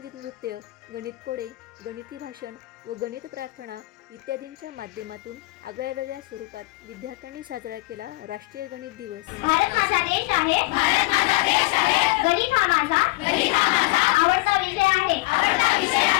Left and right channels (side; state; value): right; quieter; 22.9 dB